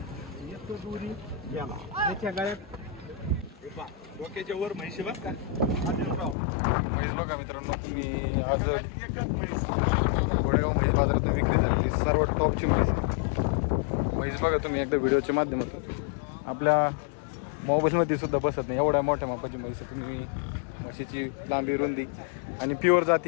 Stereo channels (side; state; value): right; drops out; at 6.4 s